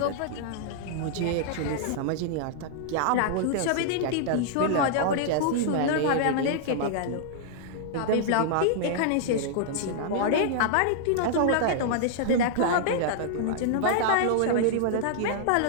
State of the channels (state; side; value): different; both; correlation -0.01